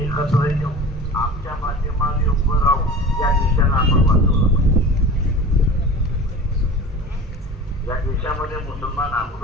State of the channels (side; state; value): both; normal; correlation 0.37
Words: एकत्र येऊन आमच्या माध्यमाने उभं राहून या देशाला आपण वाचवलं पाहिजे। या देशामध्ये मुसलमान